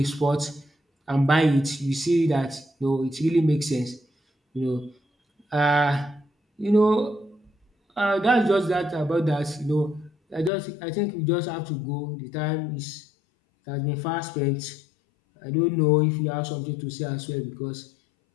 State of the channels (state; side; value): drops out; right; at 10.5 s